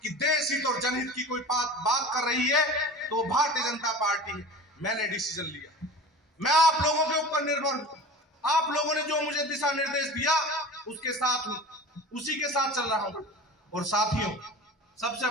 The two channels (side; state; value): both; normal; correlation 0.36